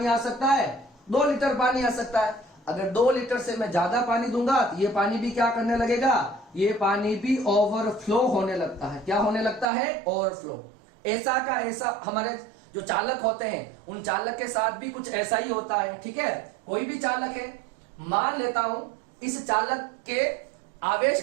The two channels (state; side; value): drops out; left; at 9.7 s